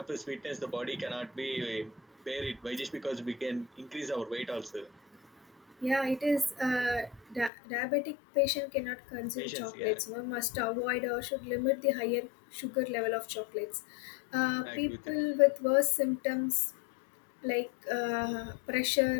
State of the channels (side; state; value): right; drops out; at 7.5 s